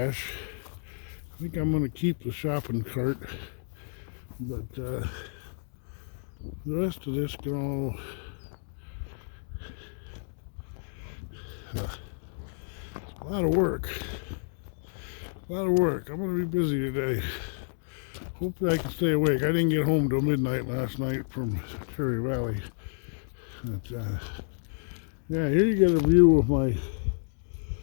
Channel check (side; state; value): right; silent; digital silence